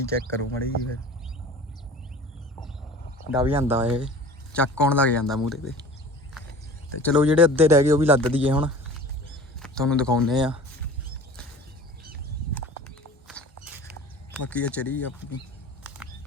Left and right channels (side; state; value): both; normal; correlation 0.41